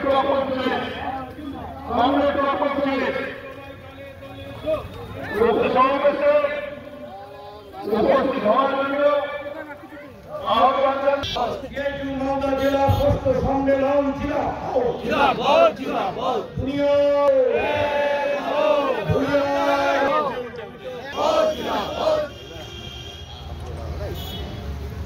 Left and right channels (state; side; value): identical; both; correlation 1.00